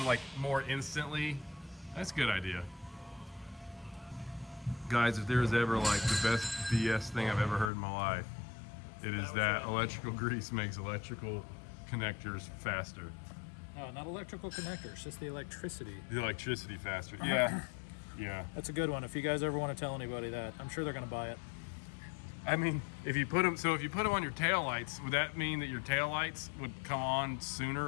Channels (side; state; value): right; drops out; at 7.7 s